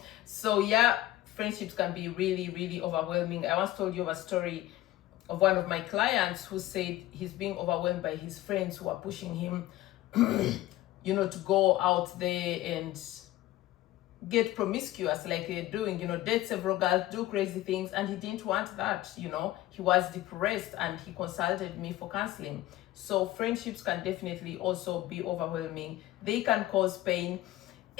So yeah, friendships can be really overwhelming. I once told you of a story of one of my clients who said he's being overwhelmed by his friends who are pushing him you know, to go out there and get promiscuous like they're doing, you know, date several girls, do crazy things, and he didn't want that, you know. He was depressed and he consulted me for counseling. So friendships can definitely also be overwhelming. They can cause pain,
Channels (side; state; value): right; quieter; 15.7 dB